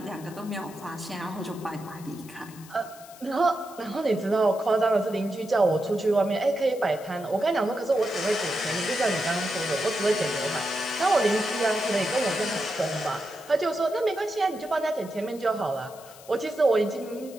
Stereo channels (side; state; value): left; noise; hiss, 20 dB below the sound